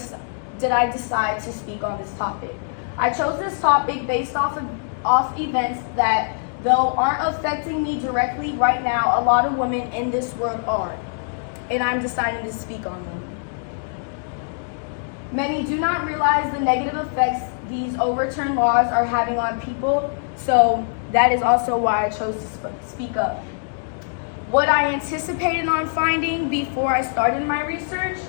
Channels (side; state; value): right; silent; digital silence